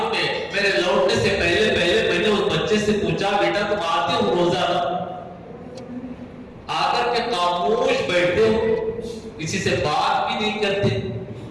میں میرے لوٹنے سے پہلے میں نے اس بچے سے پوچھا، بیٹا تم آتے ہو روزانہ؟ آ کر کے خاموش بیٹھتے ہو، کسی سے بات بھی نہیں کرتے،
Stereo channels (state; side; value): identical; both; correlation 1.00